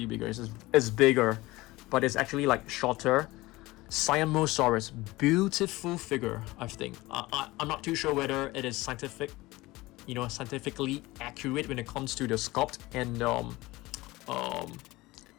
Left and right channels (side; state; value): right; quieter; 20.0 dB